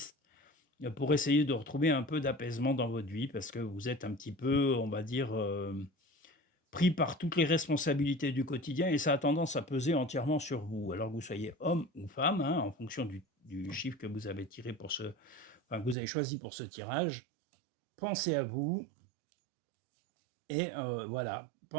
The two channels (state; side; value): drops out; left; at 16.0 s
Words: pour essayer de retrouver un peu d'apaisement dans votre vie parce que vous êtes un petit peu, on va dire, pris par toutes les responsabilités du quotidien et ça a tendance à peser entièrement sur vous. Alors que vous soyez homme ou femme, hein, en fonction du chiffre que vous avez tiré pour ce enfin, que vous avez choisi pour ce tirage, pensez à vous et voilà,